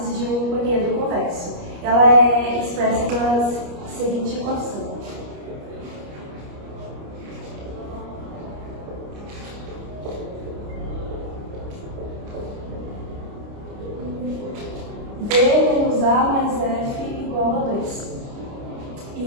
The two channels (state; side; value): late; left; 29 ms